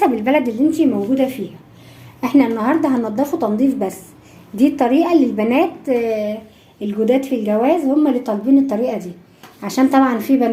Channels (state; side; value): identical; both; correlation 1.00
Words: البلد اللي انتي موجودة فيها. احنا النهاردة هننضفه تنظيف بس. دي الطريقة اللي البنات الجداد في الجواز هم اللي طالبين الطريقة دي، عشان طبعا في